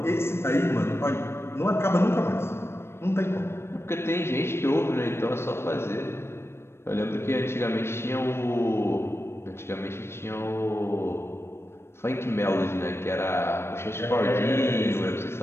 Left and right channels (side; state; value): right; late; 0.12 ms